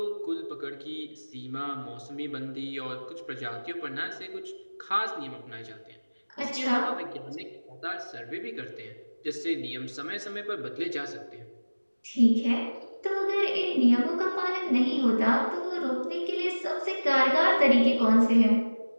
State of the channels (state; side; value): inverted; both; correlation -1.00